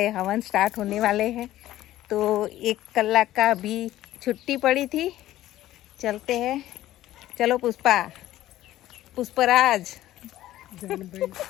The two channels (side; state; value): right; quieter; 14.4 dB